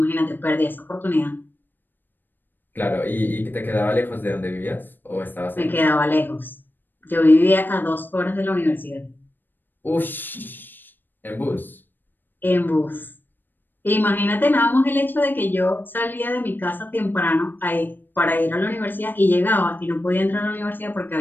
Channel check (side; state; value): right; late; 0.093 ms